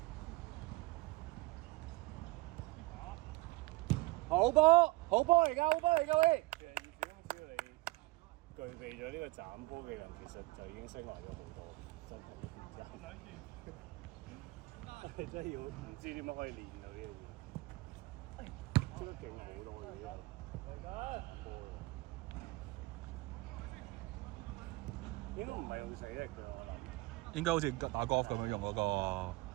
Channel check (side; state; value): left; quieter; 22.5 dB